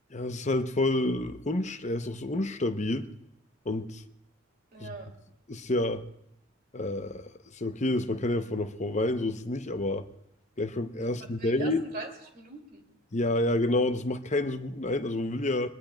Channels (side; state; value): both; normal; correlation 0.46